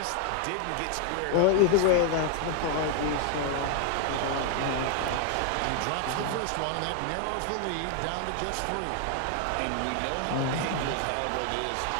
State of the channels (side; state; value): both; different; correlation 0.00